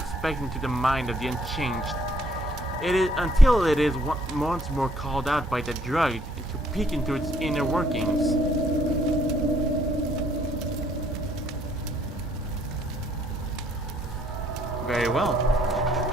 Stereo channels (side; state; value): both; normal; correlation 0.66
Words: back into the mind of the unchanged. It is until it is once more called out by the drug to peek into its inner workings. Very well.